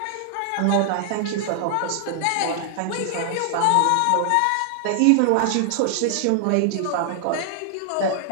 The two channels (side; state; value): both; different; correlation 0.00